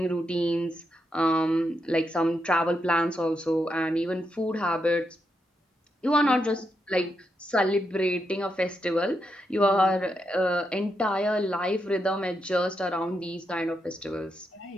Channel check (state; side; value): normal; both; correlation 0.83